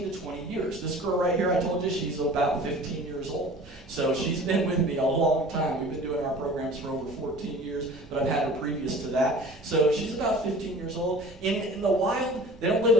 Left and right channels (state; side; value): normal; both; correlation 0.43